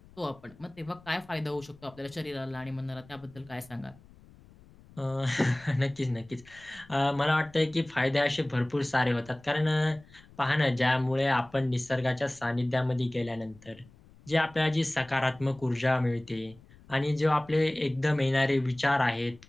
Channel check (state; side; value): noise; left; rumble, 24 dB below the sound